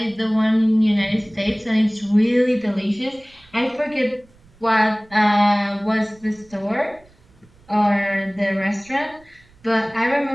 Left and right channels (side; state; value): right; noise; rumble, 29 dB below the sound